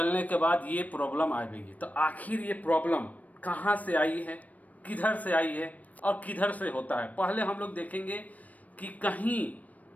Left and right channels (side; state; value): right; late; 0.072 ms